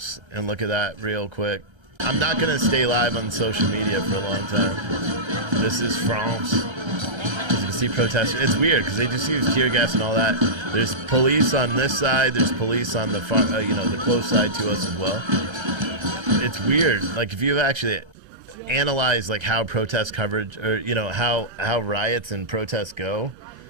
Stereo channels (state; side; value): late; left; 1.3 ms